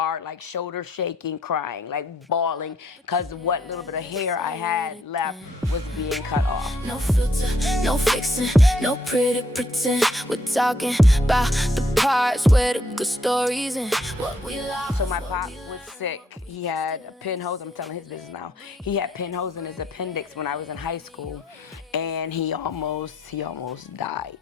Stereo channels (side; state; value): both; normal; correlation 0.71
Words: like shoulder shaking, crying, like bawling, because what little bit of hair I had left was being cut off. No filter, no fixing, no pretty pretend. We're talking about the parts where the good stories and what we lost. So my pop was sick. He had a pinholes. I'm telling his business now. He had pinholes in his appendix when I was in high school, and he almost died.